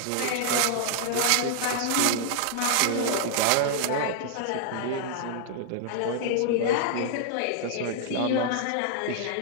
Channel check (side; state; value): both; different; correlation -0.01